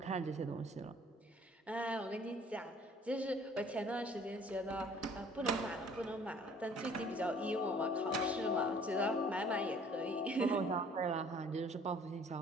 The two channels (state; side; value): normal; both; correlation 0.55